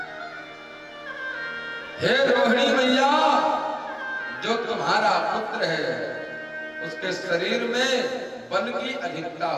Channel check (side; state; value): both; identical; correlation 1.00